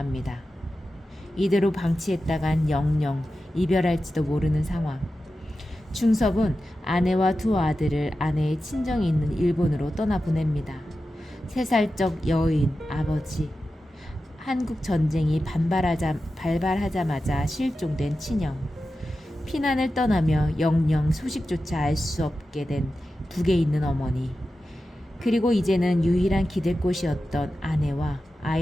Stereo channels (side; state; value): both; normal; correlation 0.92